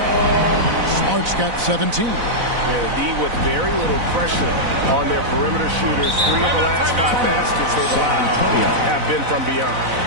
Smart's got 17. Yeah, the D with very little pressure on their perimeter shooters. 3 of the last 5 baskets they've allowed have been from beyond.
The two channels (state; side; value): late; left; 4.0 ms